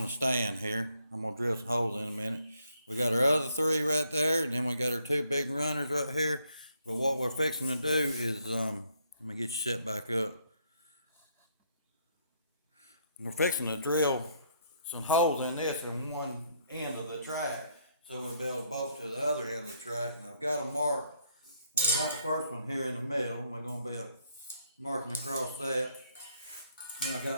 the stand here. I'm going to drill some holes in a minute. We got our other three right there, and then we got our two big runners right here. But what we're fixing to do is, let me get you set back up. We're fixing to drill some holes in this in one end of the track, so we'll be able to bolt to the other end of the track. And I've got them marked. Well, I got the first one here in the middle. We're going to be marking across that. Then I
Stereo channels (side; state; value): both; inverted; correlation -0.71